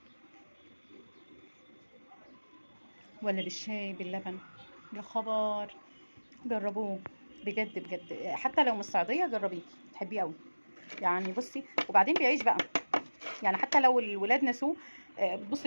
ولا بالشاي باللبن، يا خبر، جربوه بجد بجد، حتى لو مش صعيدية جربيه تحبيه قوي. يعني بصي، وبعدين بيعيش بقى، يعني حتى لو الولاد نسوه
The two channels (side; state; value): both; inverted; correlation -1.00